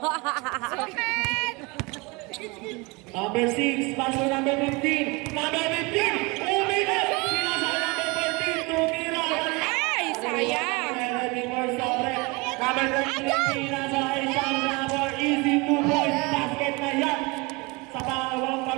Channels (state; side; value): quieter; left; 26.2 dB